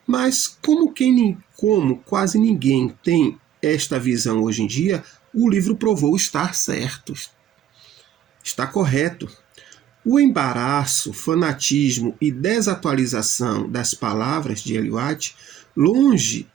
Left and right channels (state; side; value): quieter; left; 10.5 dB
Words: Mas como quase ninguém tem esta visão hoje em dia, o livro provou estar certo. Está correto. O embaraço, fanatismo e desatualização das palavras de Ellen White, longe